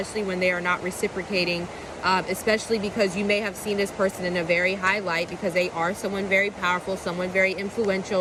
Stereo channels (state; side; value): identical; both; correlation 1.00